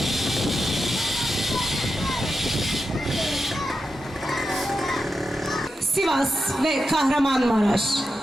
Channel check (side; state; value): both; normal; correlation 0.89